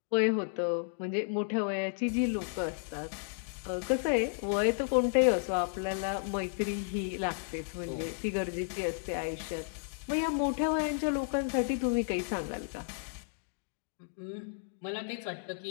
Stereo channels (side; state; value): right; silent; digital silence